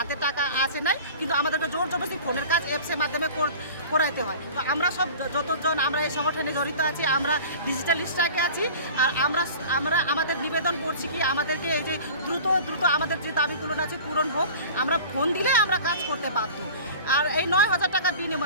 টাকা আসে নাই। কিন্তু আমাদেরকে জোর জবরদস্তি ফোনের কাজ অ্যাপসের মাধ্যমে করাইতে হয়। তো আমরা সব যতজন আমরা এই সংগঠনে জড়িত আছি, আমরা ডিজিটাল স্ট্রাইকে আছি। আর আমরা আমাদের নিবেদন করছি কি আমাদেরকে এই যে দ্রুত আমাদের যে দাবিগুলো আছে পূরণ হোক। আমরা ফোন দিলে আমরা কাজ করতে বাধ্য। আর এই 9,000 টাকা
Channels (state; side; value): inverted; both; correlation -0.39